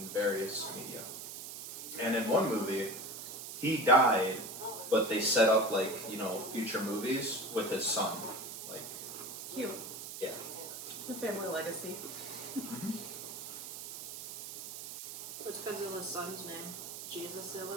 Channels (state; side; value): noise; right; hiss, 9 dB below the sound